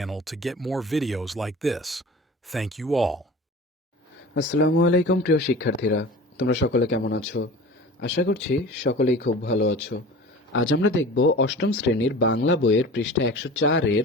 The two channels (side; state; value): both; normal; correlation 0.38